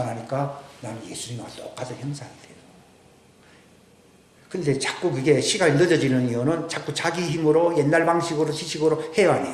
나는 예수님과 똑같은 형상이 돼요. 근데 자꾸 그게 시간이 늦어지는 이유는 자꾸 자기 힘으로 옛날 방식으로 지식으로 해야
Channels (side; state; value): both; identical; correlation 1.00